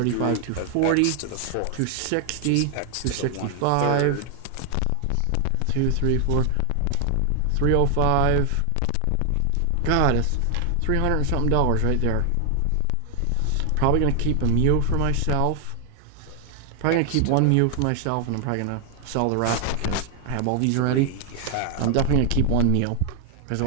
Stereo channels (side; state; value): both; different; correlation 0.00